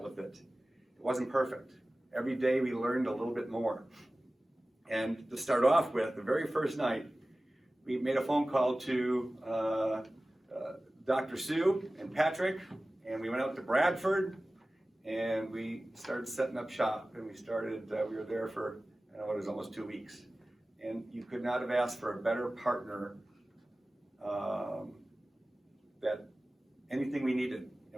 with it. It wasn't perfect. Every day we learned a little bit more. And to start off with, the very first night, we made a phone call to Dr. Sue and Patrick, and we went out to Bradford, and we started setting up shop, and we were there for, I don't know, it was almost 2 weeks. And you could not have asked for a better partner, that anything we needed,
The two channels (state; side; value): normal; both; correlation 0.97